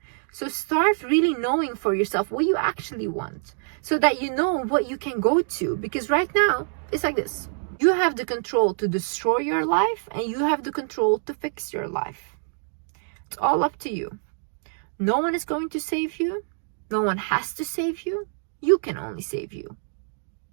So start really knowing for yourself what you actually want, so that you know what you can go to. Because right now, it's like this. You have the control to destroy your life, and you have the control to fix your life. It's all up to you. No one is going to save you. No one has to save you. You can only save you.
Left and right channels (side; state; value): left; silent; 61 dB below the other